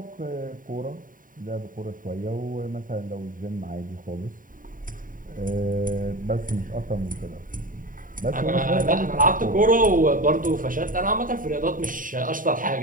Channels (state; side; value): late; left; 0.39 ms